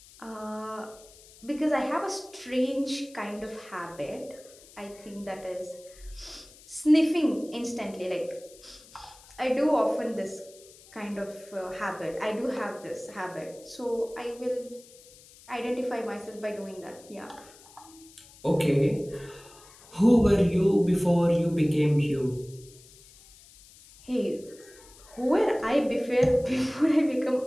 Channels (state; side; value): noise; left; hiss, 23 dB below the sound